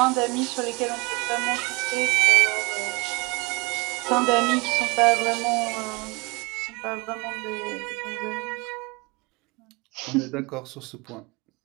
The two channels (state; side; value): quieter; left; 27.2 dB